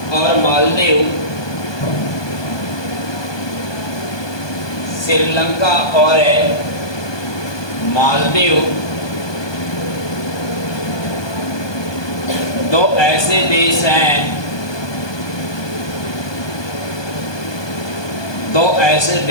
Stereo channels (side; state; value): right; late; 1.2 ms